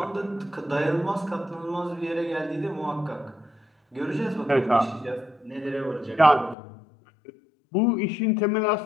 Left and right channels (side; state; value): right; drops out; at 6.6 s